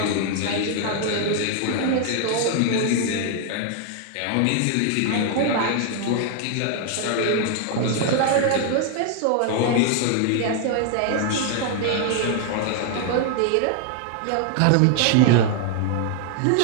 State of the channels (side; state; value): both; different; correlation 0.00